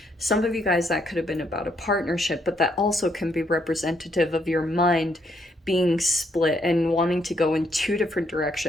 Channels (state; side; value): normal; both; correlation 0.73